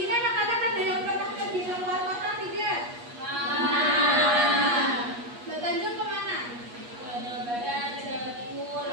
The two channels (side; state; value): left; late; 8.3 ms